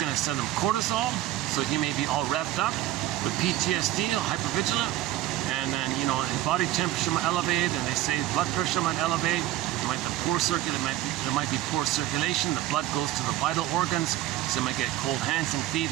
to send him cortisol, so he may be all revved up with PTSD, hypervigilant, and then, you know, his body temperature might elevate, and they say blood pressure might elevate. There might be poor circulation. The blood goes to the vital organs, so you might get cold hands and feet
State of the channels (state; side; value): quieter; left; 14.3 dB